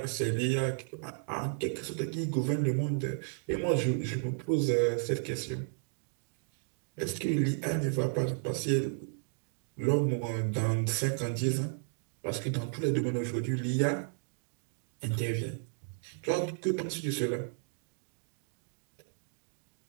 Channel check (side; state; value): left; silent; digital silence